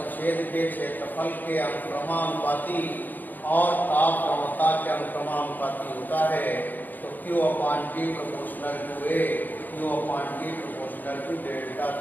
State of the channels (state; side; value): late; right; 0.087 ms